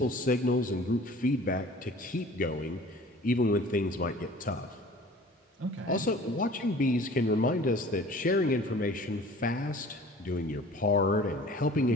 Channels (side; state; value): both; normal; correlation 0.46